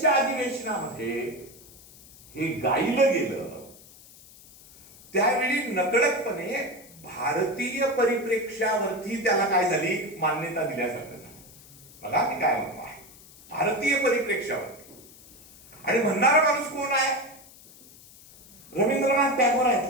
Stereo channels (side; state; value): left; noise; hiss, 22 dB below the sound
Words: अधिवेशनामध्ये हे गायलं गेलं, त्यावेळी नकळतपणे भारतीय परिप्रेक्ष्यावरती त्याला काय झाली? मान्यता दिल्यासारखं झालं. बघा मी काय म्हणतो आहे, भारतीय परिप्रेक्ष्यावरती. आणि म्हणणारा माणूस कोण आहे? रवींद्रनाथ टागोर